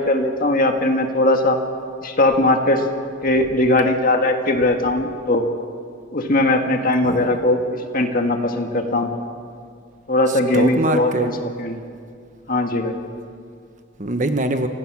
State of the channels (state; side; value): normal; both; correlation 0.20